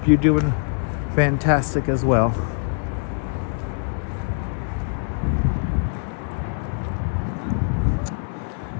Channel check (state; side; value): silent; right; digital silence